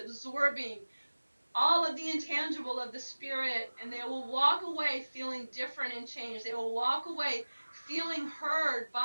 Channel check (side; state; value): both; inverted; correlation -1.00